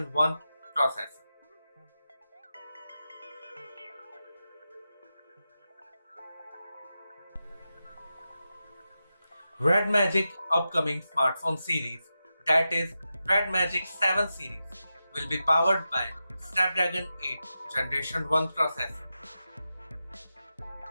1 processor. REDMAGIC upcoming smartphone series, that is REDMAGIC 7 series, will be powered by Snapdragon 8 Generation 1 processor.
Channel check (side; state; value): both; inverted; correlation -0.91